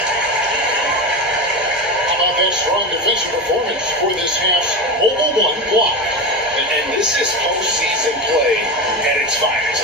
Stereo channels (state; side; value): normal; both; correlation 0.21